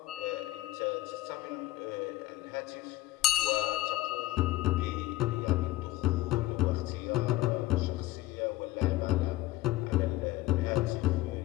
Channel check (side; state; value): right; quieter; 16.5 dB